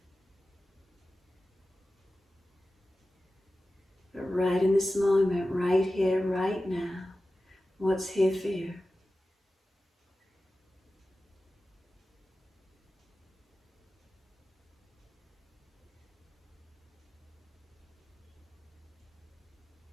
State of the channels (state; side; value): normal; both; correlation 0.95